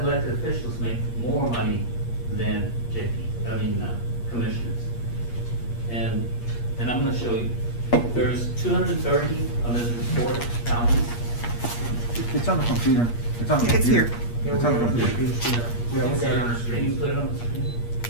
elected officials make more money than commissioners. And I'm gonna show you, there's 230 on this report counties. It's on the computer. It's on the It's computer. here. It's on the computer. Yeah, we got it. Can you put it on the screen?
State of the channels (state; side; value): late; right; 8.5 ms